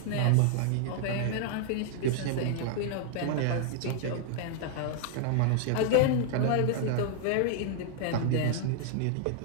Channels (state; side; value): different; both; correlation -0.01